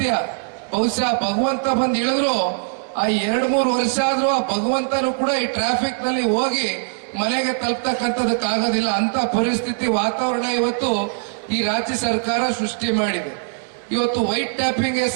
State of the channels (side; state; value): left; silent; digital silence